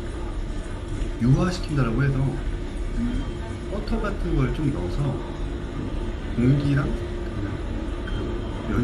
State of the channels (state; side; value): identical; both; correlation 1.00